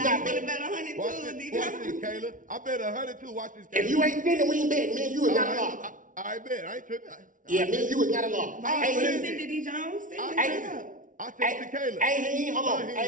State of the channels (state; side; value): late; left; 0.38 ms